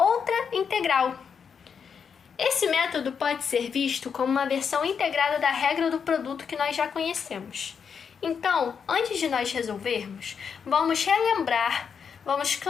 integral. Esse método pode ser visto como uma versão integrada da regra do produto que nós já conhecemos. Então, antes de nós resolvermos, vamos relembrar, vamos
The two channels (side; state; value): right; quieter; 6.7 dB